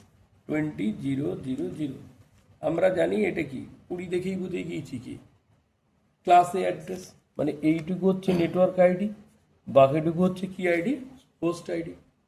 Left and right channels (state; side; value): identical; both; correlation 1.00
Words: 20,000, আমরা জানি এটা কি 20 দেখেই বুঝে গিয়েছি কি ক্লাস এ অ্যাড্রেস, মানে এইটুকু হচ্ছে নেটওয়ার্ক আইডি, বাকিটুকু হচ্ছে কি আইডি? হোস্ট আইডি,